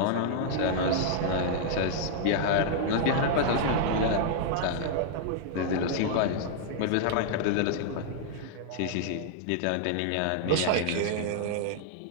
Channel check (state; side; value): different; both; correlation -0.01